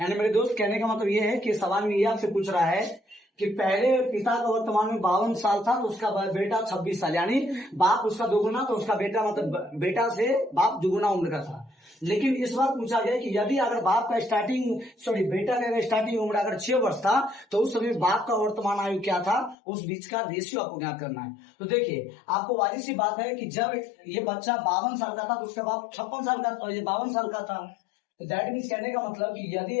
यानी मेरे दोस्त कहने का मतलब ये है कि सवाल में ये आपसे पूछ रहा है कि पहले पिता का वर्तमान में 52 साल था तो उसका बेटा 26 साल, यानी बाप उसका दोगुना तो उसका बेटा मतलब बेटा से बाप दुगुना उम्र का था। लेकिन इस बार पूछा गया कि यदि अगर बाप का बेटा का स्टार्टिंग उम्र अगर 6 वर्ष था तो उस समय बाप का वर्तमान आयु क्या था, उस बीच का रेशियो आपको ज्ञात करना है। तो देखिए आपको वाली सी बात है कि जब ये बच्चा 52 साल का था तो उसका बाप 56 साल का और ये 52 साल का था। तो दैट मीन्स कहने का मतलब कि यदि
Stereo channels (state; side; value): drops out; right; at 19.6 s